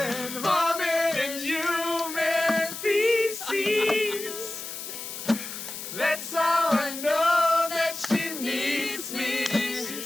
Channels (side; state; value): left; noise; hiss, 8 dB below the sound